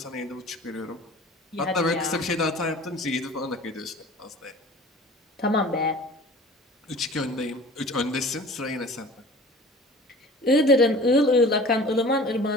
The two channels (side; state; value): both; normal; correlation 0.43